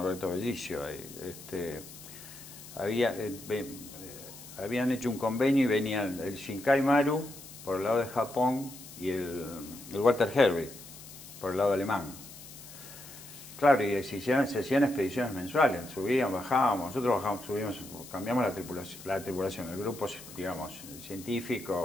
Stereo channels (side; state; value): left; noise; hiss, 16 dB below the sound